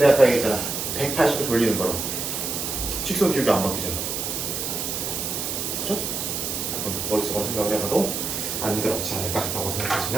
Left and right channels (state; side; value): noise; right; hiss, 3 dB below the sound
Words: 아까 얘기했잖아 180도 돌리는 거로 직선 기울기 안 바뀌잖아. 그죠? 머릿속으로 생각을 해봐도 안 그렇지 않을까 라고